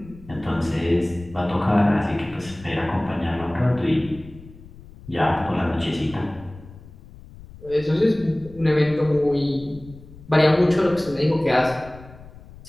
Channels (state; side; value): noise; left; rumble, 19 dB below the sound